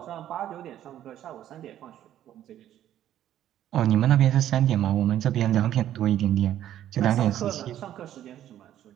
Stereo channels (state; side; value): quieter; left; 11.7 dB